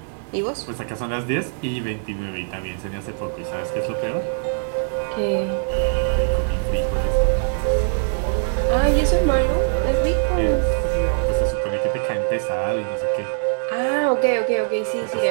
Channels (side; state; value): left; silent; digital silence